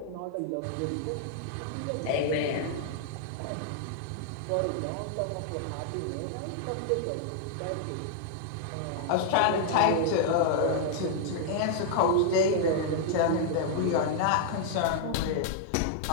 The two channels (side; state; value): both; different; correlation -0.01